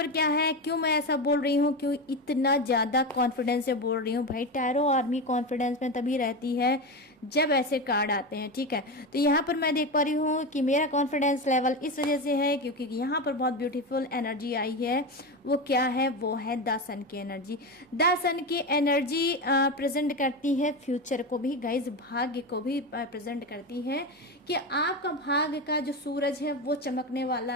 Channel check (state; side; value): normal; both; correlation 0.19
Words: क्या है, क्यों मैं ऐसा बोल रही हूँ, क्यों इतना ज़्यादा कॉन्फिडेंस से बोल रही हूँ भाई। टैरो आर्मी कॉन्फिडेंस में तभी रहती है जब ऐसे कार्ड आते हैं। ठीक है, तो यहाँ पर मैं देख पा रही हूँ कि मेरा कॉन्फिडेंस लेवल इस वजह से है क्योंकि यहाँ पर बहुत ब्यूटीफुल एनर्जी आई है। वो क्या है, वो है द सन की एनर्जी। द सन की एनर्जी प्रेजेंट करती है फ्यूचर को भी गाइज, भाग्य को भी प्रेजेंट करती है कि आपका भाग्य का जो सूरज है वो चमकने वाला